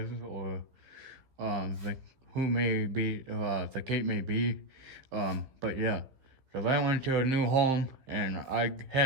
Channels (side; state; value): left; late; 15 ms